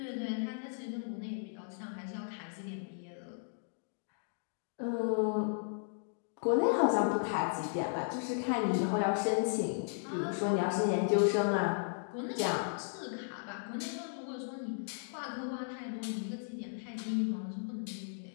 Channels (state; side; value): silent; right; digital silence